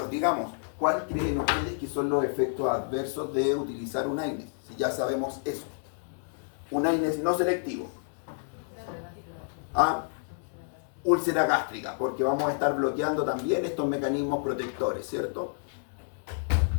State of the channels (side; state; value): right; silent; digital silence